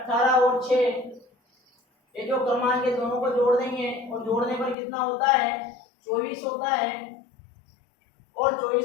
और 6, ये जो क्रमांक है दोनों को जोड़ देंगे, और जोड़ने पर कितना होता है, 24 होता है। और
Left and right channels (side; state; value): right; drops out; at 4.8 s